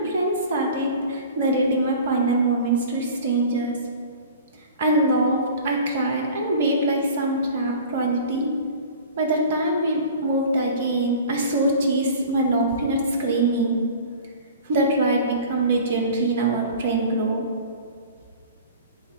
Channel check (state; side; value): inverted; both; correlation -0.42